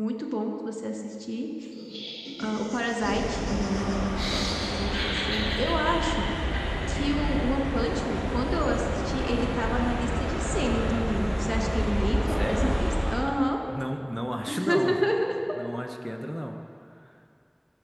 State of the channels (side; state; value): both; identical; correlation 1.00